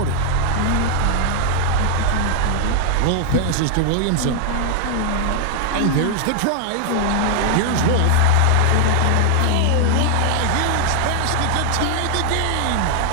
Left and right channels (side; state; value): both; different; correlation 0.00